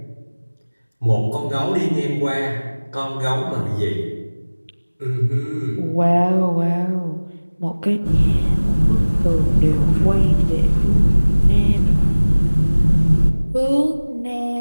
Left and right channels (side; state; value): both; inverted; correlation -1.00